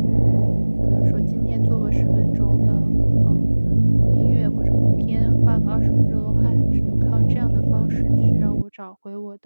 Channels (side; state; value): both; inverted; correlation -1.00